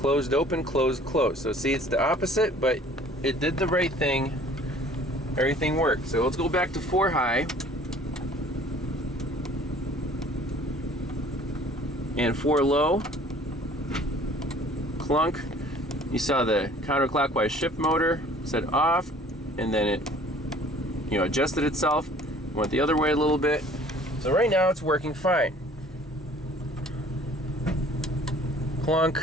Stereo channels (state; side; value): normal; both; correlation 0.52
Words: open, closed, closed. So see, it's the opposite, but it did the right thing. Everything worked. So let's go back to 4 high. And 4 low. Clunk. You saw the counterclockwise shift motor set off, and then it, adjusted itself. Went the other way a little bit. So right now it's working fine.